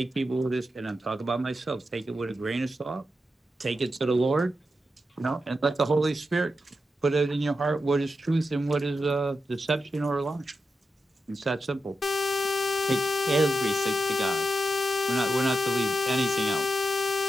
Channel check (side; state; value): both; normal; correlation 0.88